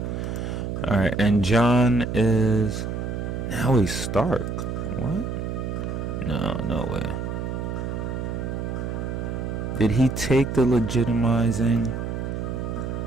All right, and John is Now he's Stark. What? No, no way. Did he take the legitimizing?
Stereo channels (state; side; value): noise; right; hum, 4 dB below the sound